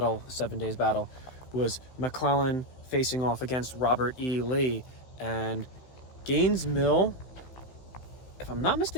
7 Days Battle, was McClellan facing off against Robert E. Lee. And Gaines' Mill, if I'm not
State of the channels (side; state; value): right; late; 16 ms